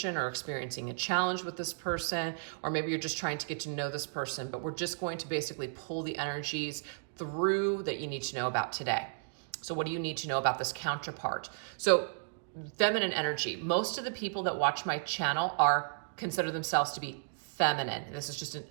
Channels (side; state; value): left; silent; digital silence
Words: or experiencing a challenge with this person, or maybe you're just trying to get to know this person, but we're just going to basically pull the energies through that you need to know about today. So what do you need to know about this counterpart? So feminine energy. Most of the people that watch my channel consider themselves to be feminine. This is just an